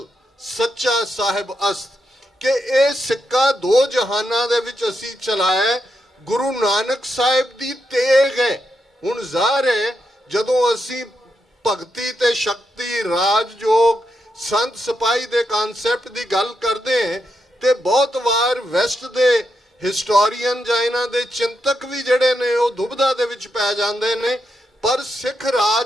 ਸੱਚਾ ਸਾਹਿਬ ਅਸਤ। ਕਿ ਇਹ ਸਿੱਕਾ ਦੋ ਜਹਾਨਾਂ ਦੇ ਵਿੱਚ ਅਸੀਂ ਚਲਾਇਆ, ਗੁਰੂ ਨਾਨਕ ਸਾਹਿਬ ਦੀ ਤੇਗ ਹੈ। ਹੁਣ ਜ਼ਾਹਰ ਹੈ ਜਦੋਂ ਅਸੀਂ ਭਗਤੀ ਤੇ ਸ਼ਕਤੀ, ਰਾਜਯੋਗ, ਸੰਤ ਸਿਪਾਹੀ ਦੇ ਕਨਸੈਪਟ ਦੀ ਗੱਲ ਕਰਦੇ ਹਾਂ ਤੇ ਬਹੁਤ ਵਾਰ ਵੈਸਟ ਦੇ ਹਿਸਟੋਰੀਅਨ ਜਾਂ ਇਹਨਾਂ ਦੇ ਚਿੰਤਕ ਵੀ ਜਿਹੜੇ ਨੇ ਉਹ ਦੁਬਿਧਾ ਦੇ ਵਿੱਚ ਪੈ ਜਾਂਦੇ ਨੇ। ਪਰ ਸਿੱਖ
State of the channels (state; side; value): normal; both; correlation 0.83